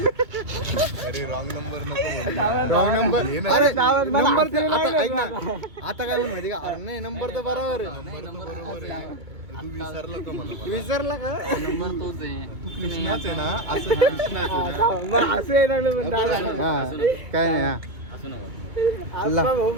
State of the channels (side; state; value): left; late; 2.2 ms